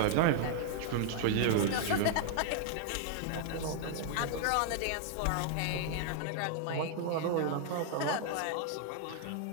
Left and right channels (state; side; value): different; both; correlation 0.00